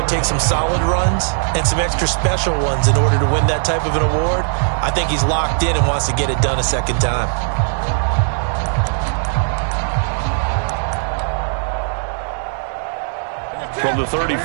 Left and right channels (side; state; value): left; silent; digital silence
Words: takes some solid runs and some extra special ones in order to win that type of an award. I think he's locked in and wants to get it done a second time. From the